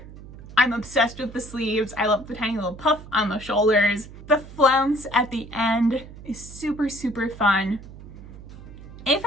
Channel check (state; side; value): noise; right; hum, 16 dB below the sound